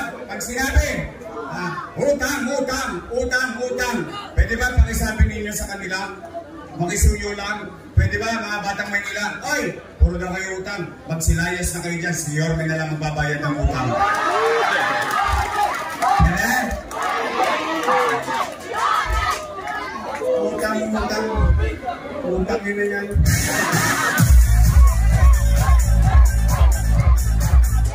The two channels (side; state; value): both; identical; correlation 1.00